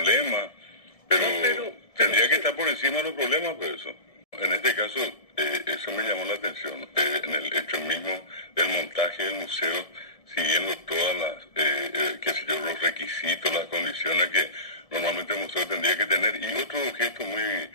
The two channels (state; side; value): late; right; 1.7 ms